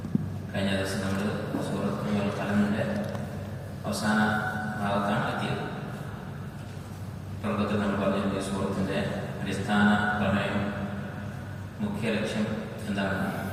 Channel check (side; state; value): both; identical; correlation 1.00